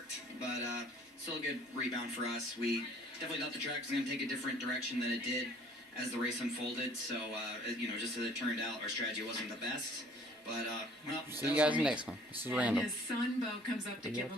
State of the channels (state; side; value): normal; both; correlation 0.55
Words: But still a good rebound for us. We definitely thought the track was going to take a different direction than it did as the race unfolded. So, you know, just as it turned out, our strategy wasn't the best. But, well, See you guys next one. This is And Randall. his son, Bo, comes up to give